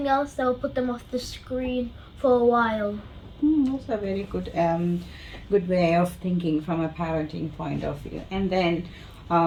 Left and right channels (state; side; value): identical; both; correlation 1.00